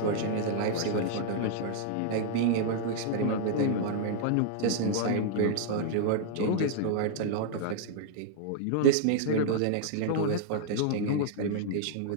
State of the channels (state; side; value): different; both; correlation -0.01